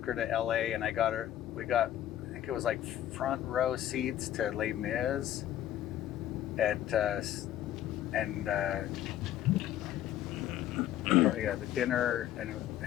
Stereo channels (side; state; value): right; quieter; 12.0 dB